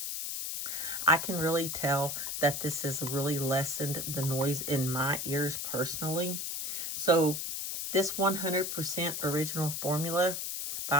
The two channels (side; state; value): left; noise; hiss, 3 dB below the sound